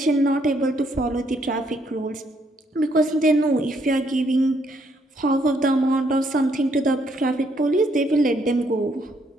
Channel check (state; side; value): normal; both; correlation 0.71